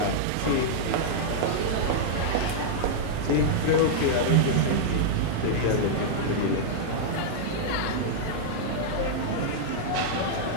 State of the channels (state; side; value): different; both; correlation -0.02